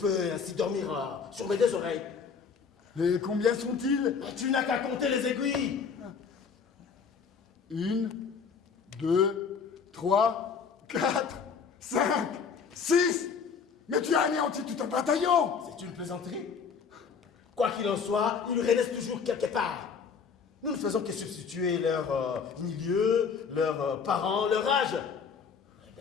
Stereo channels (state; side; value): quieter; right; 6.0 dB